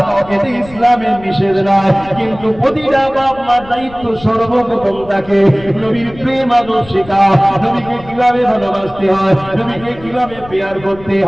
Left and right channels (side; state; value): left; noise; rumble, 19 dB below the sound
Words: এতে ইসলামের নিষেধ নাই। কিন্তু প্রতিটা বাপ মার দায়িত্ব সর্বপ্রথম তাকে নবীর প্রেম আদর শেখাও, নবীকে কিভাবে ভালোবাসতে হয়, নবীকে কিভাবে পেয়ার করতে